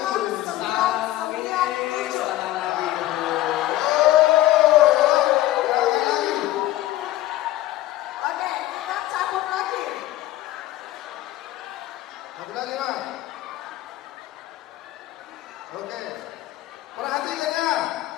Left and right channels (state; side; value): quieter; right; 15.5 dB